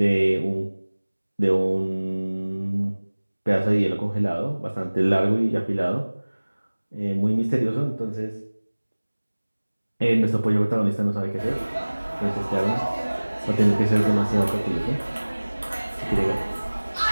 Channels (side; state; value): both; inverted; correlation -1.00